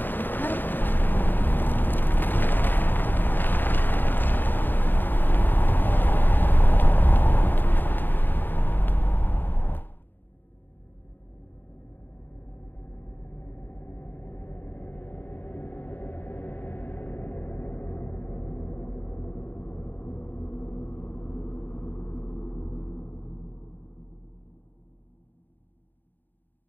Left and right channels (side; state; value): right; late; 0.092 ms